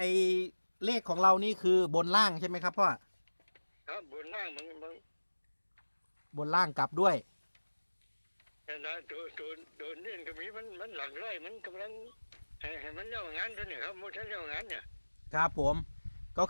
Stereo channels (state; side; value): inverted; both; correlation -1.00